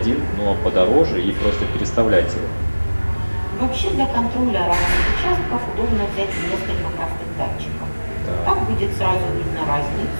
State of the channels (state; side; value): inverted; both; correlation -1.00